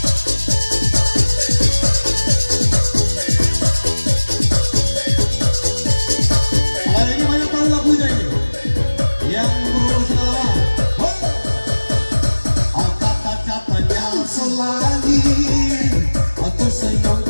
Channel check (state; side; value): inverted; both; correlation -1.00